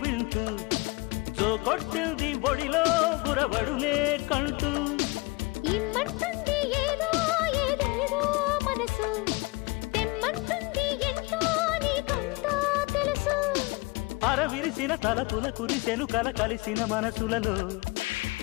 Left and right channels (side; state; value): right; quieter; 25.2 dB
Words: వింటూ జో కొట్టింది ఒడిలో గురబడులే కంటూ ఇమ్మంటుంది ఏదో ఏదేదో మనసు తెమ్మంటుంది ఎంతో నీకంతా తెలుసు అరవిరిసిన తలపుల కురిసెను కల కలిసిన మనసులలో